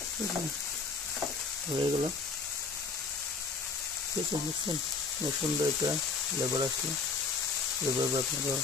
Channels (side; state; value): right; quieter; 4.4 dB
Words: হয়ে গেল, ঠিক আছে। বুঝছেন সুন্দর একটা ফ্লেভার আসলো, এভাবে আপনারা